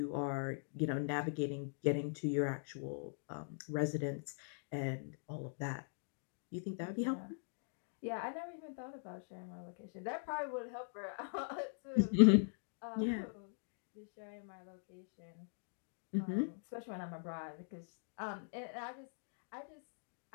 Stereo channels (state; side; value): silent; right; digital silence